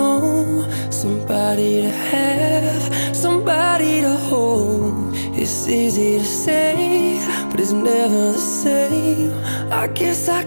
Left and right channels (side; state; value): both; inverted; correlation -1.00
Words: somebody to have, somebody to hold. It's easy to say, but it's never the same. I guess I